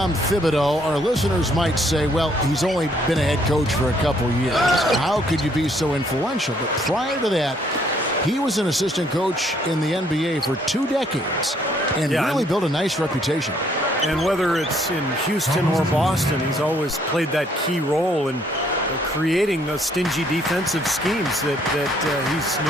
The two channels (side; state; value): both; normal; correlation 0.66